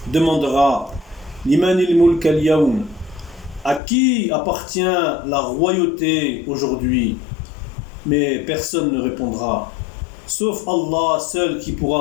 demandera Limanil mulk al-yawm, à qui appartient la royauté aujourd'hui? Mais personne ne répondra, sauf Allah seul qui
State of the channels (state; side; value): drops out; right; at 3.8 s